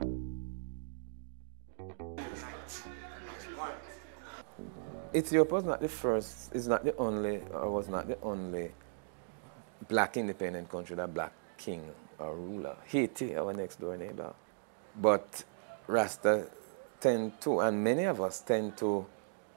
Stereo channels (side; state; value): left; silent; digital silence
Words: Africa shall hold and unite as one. Ethiopia was not the first, is not the only, or was not the only black independent country that black king or ruler. Haiti, our next door neighbor. But Rasta tend to, and many of us tend to